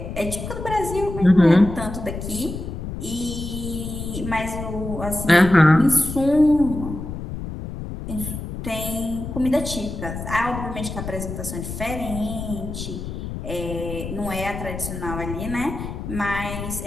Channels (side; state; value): left; noise; rumble, 7 dB below the sound